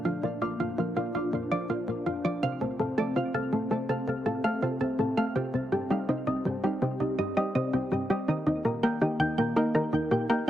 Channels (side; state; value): both; normal; correlation 0.85